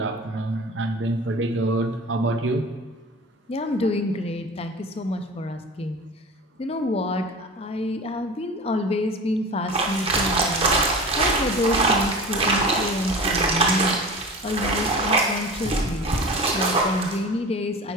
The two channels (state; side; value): normal; both; correlation 0.35